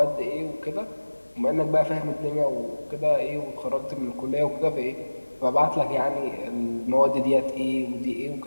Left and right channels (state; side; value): inverted; both; correlation -1.00